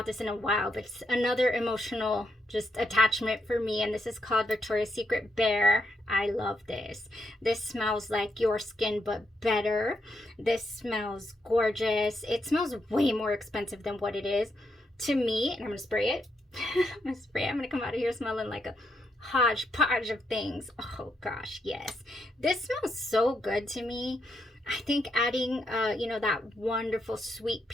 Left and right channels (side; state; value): both; normal; correlation 0.80